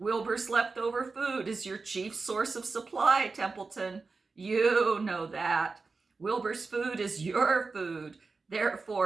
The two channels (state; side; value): quieter; left; 4.2 dB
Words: leftover food is your chief source of supply, Templeton. You know that. Wilbur's food is your food.